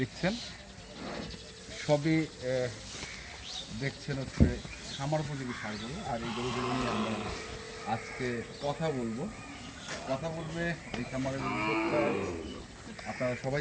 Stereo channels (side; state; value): both; identical; correlation 1.00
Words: দেখছেন সবই দেখছেন হচ্ছে খামার উপযোগী ষাঁড়গুলো, আর এই গরুগুলো নিয়ে আমরা আজকে কথা বলবে এই খামারের উদ্যোক্তা। আপনারা সবাই